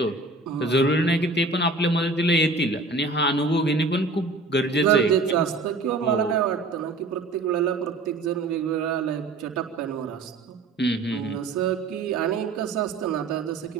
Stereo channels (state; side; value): quieter; left; 3.3 dB